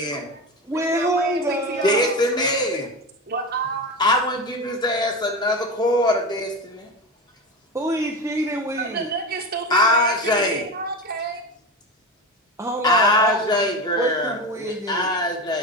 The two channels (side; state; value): both; normal; correlation 0.23